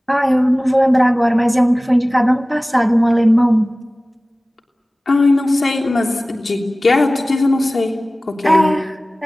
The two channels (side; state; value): both; normal; correlation 0.98